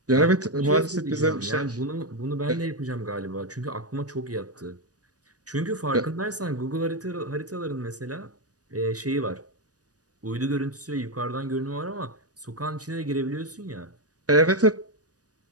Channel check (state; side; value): late; left; 0.68 ms